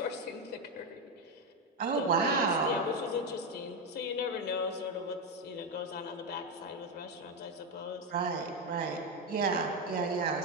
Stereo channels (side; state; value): both; normal; correlation 0.09